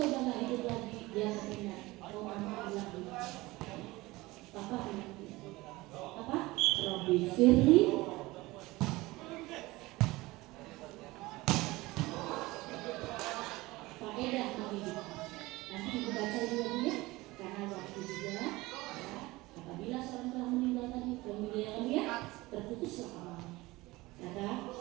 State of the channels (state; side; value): quieter; left; 20.5 dB